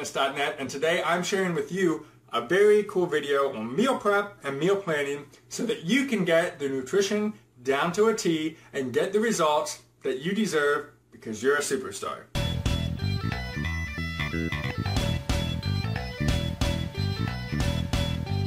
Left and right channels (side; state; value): both; identical; correlation 1.00